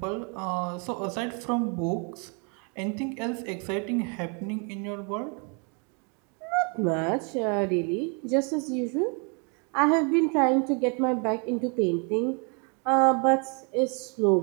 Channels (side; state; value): left; quieter; 35.8 dB